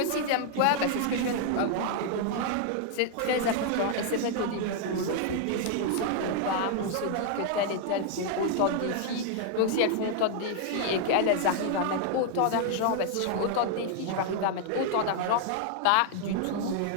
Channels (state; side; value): different; both; correlation 0.00